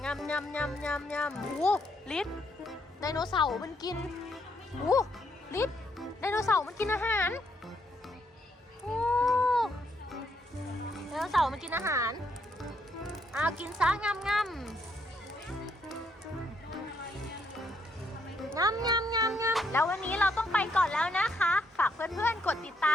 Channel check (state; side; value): normal; both; correlation 0.74